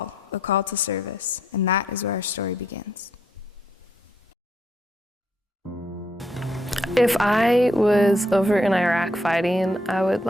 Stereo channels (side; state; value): both; normal; correlation 0.73